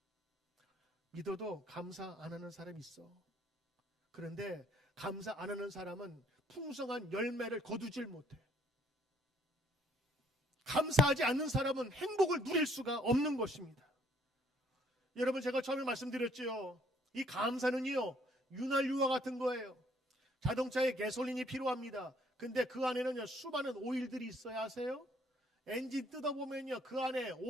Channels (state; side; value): normal; both; correlation 0.63